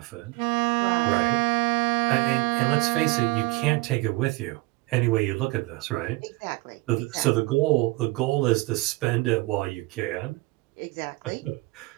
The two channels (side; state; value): left; quieter; 22.6 dB